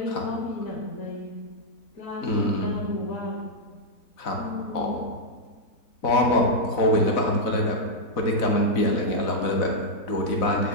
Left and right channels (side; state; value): right; late; 4.0 ms